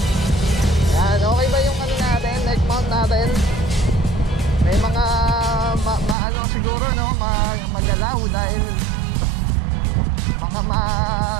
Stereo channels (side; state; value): left; drops out; at 6.2 s